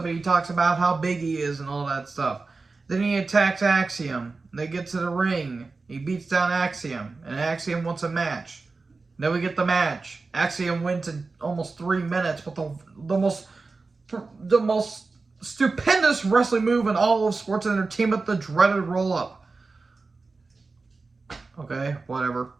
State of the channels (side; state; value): left; quieter; 3.9 dB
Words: and he talks about how big he is and all that stuff. Then he attacks Axiom. They get to the ring. He beats down Axiom. And Axiom wants a match. Then we get the match. Axiom wins in almost 3 minutes with the most stupendous wrestling move in all of sports entertainment, the dreaded roll-up. Okay, whatever.